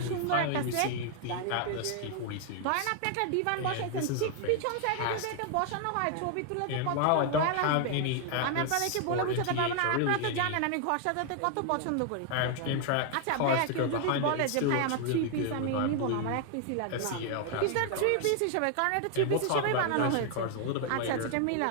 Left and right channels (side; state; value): both; different; correlation 0.00